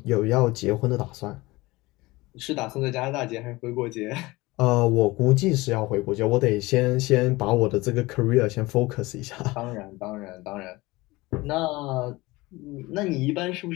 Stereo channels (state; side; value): quieter; right; 21.2 dB